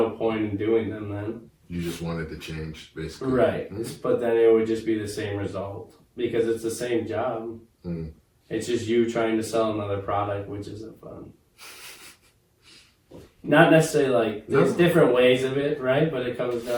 point in doing them then. You just wanted to change, basically. Right. Mhm. But then it would just be the same result because it's the same job. Mm. It's just you trying to sell another product, which isn't fun. Not necessarily like, there's No. different ways of it, right? But it comes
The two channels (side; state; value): both; identical; correlation 1.00